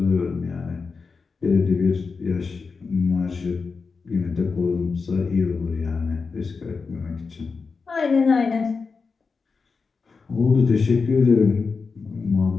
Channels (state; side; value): quieter; right; 4.8 dB